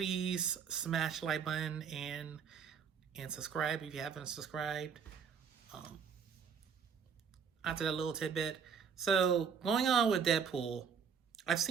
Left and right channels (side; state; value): left; quieter; 6.7 dB